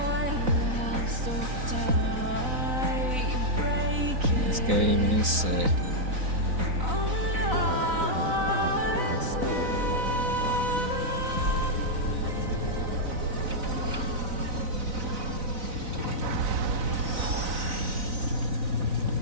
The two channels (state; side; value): late; left; 4.0 ms